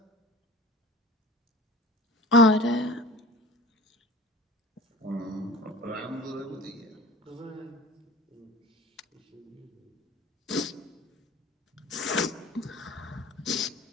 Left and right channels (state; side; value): normal; both; correlation 0.40